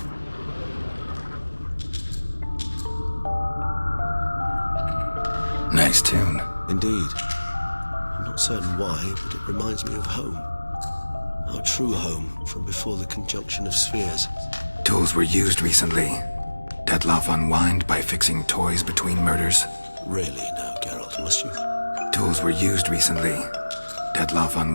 Nice tune. Indeed. I'm not certain why, but it reminds me of home. Our true home from before the conjunction of spheres. Tools were used recently. Detlef unwind by fixing toys between murders. Really now, Geralt, must you? Tools were used recently. Detlef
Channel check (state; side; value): inverted; both; correlation -1.00